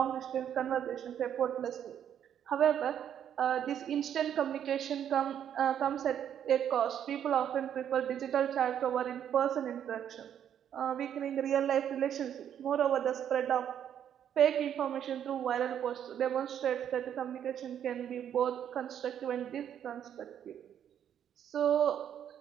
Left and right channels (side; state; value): left; quieter; 9.5 dB